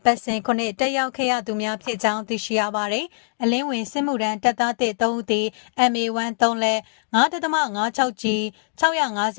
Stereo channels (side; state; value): right; silent; digital silence